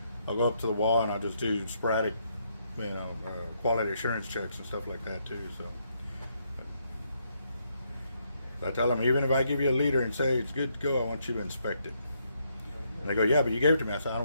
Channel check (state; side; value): inverted; both; correlation -0.75